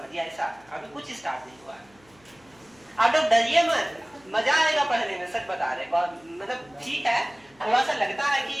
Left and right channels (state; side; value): noise; left; hum, 30 dB below the sound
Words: ऐसा, अभी कुछ स्टार्ट नहीं हुआ है। आप लोग डरिए मत, मजा आएगा पढ़ने में, सच बता रहे, मतलब ठीक है, थोड़ा सा लगता है कि